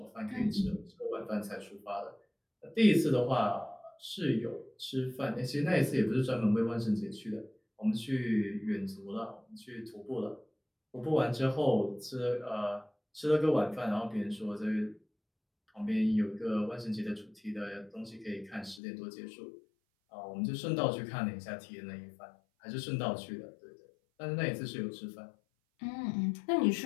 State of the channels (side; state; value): right; drops out; at 18.8 s